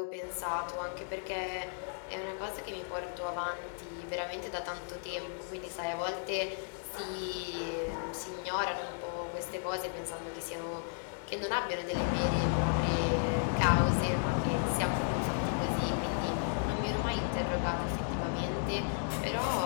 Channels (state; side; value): silent; right; digital silence